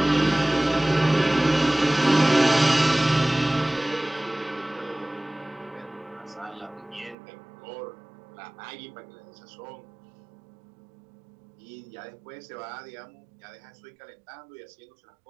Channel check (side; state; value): left; drops out; at 7.2 s